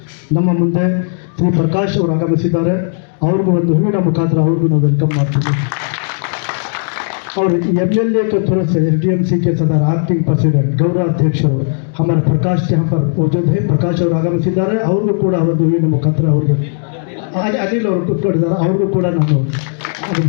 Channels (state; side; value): silent; right; digital silence